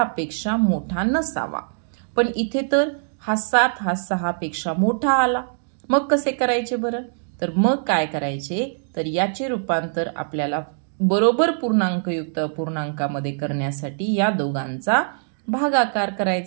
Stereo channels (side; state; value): left; silent; digital silence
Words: मोठा नसावा. पण इथे तर हा 7 हा 6 पेक्षा मोठा आला. मग कसे करायचे बरं? तर मग काय करायचे? तर याचे रूपांतर आपल्याला बरोबर पूर्णांकयुक्त अपूर्णांकामध्ये करण्यासाठी या दोघांचा भागाकार